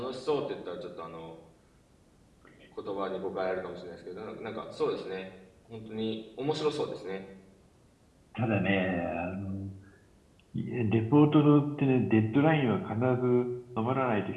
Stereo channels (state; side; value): identical; both; correlation 1.00